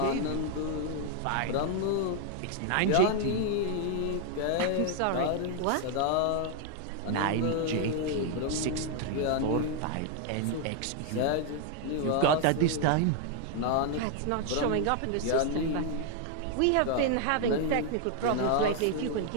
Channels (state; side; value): different; both; correlation 0.00